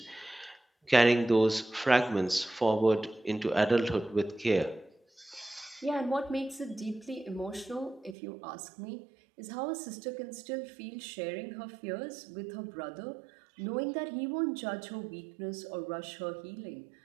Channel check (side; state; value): left; drops out; at 8.2 s